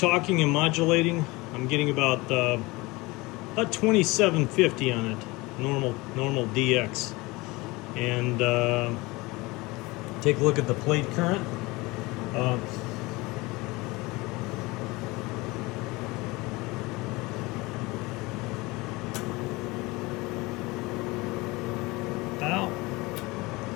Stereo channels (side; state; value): right; quieter; 22.9 dB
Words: and modulating, I'm getting about 2750 on it, normal DX. And take a look at the plate current.